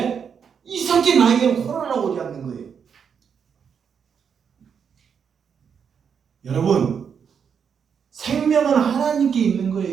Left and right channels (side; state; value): left; quieter; 7.0 dB